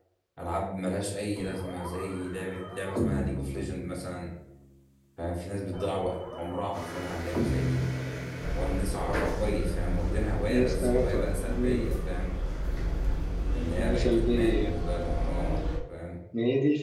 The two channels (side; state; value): both; identical; correlation 1.00